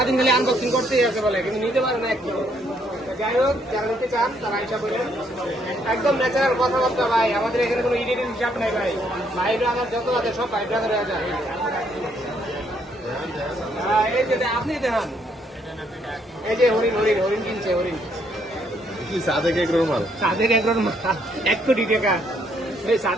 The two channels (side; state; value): both; normal; correlation 0.70